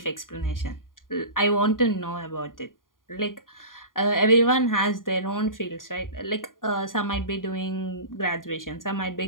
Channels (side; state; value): right; late; 0.90 ms